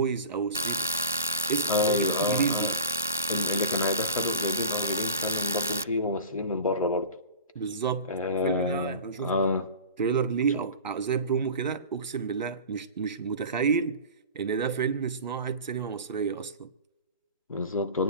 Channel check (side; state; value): both; inverted; correlation -0.34